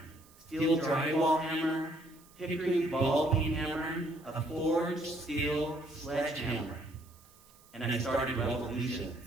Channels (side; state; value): right; noise; hiss, 27 dB below the sound